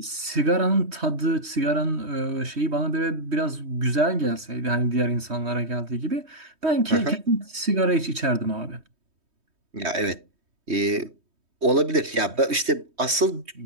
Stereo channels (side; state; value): left; late; 3.2 ms